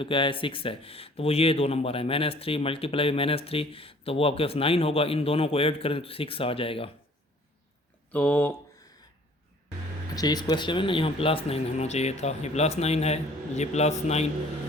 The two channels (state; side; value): normal; both; correlation 0.54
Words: क्या है 6 है। तो वो ये 2 नंबर है, -3 मल्टीप्लाई 3, तो वो आपके पास 9 होगा। इन दोनों को ऐड करें तो 6 आ जाएगा। तो अच्छा, इस क्वेश्चन में ना यहाँ +9 होना चाहिए था, ये +9 है, ये +9